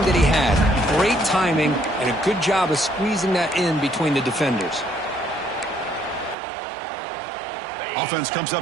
that he had. Great timing and a good job of squeezing that in between the defenders. Offense comes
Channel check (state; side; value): drops out; left; at 6.4 s